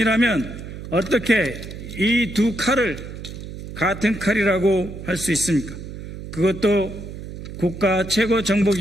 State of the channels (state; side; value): noise; right; hum, 11 dB below the sound